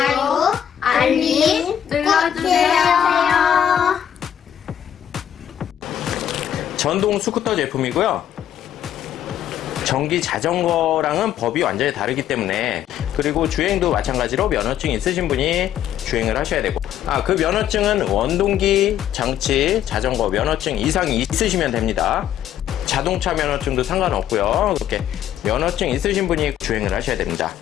알림 눌러주세요. 전동 스쿠터 제품이고요. 전기 자전거랑은 법이 완전히 다르기 때문에, 그리고 주행도 마찬가지로 면허증 있으신 분이 주행을 하셔야 되고, 그 면허증은 원동기 장치 자전거 면허증 이상이 있으시면 됩니다. 자동차 면허증도 상관없고요. 이렇게 면허증 있으신 분이 주행을 하셔야 됩니다.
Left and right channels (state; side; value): quieter; right; 10.2 dB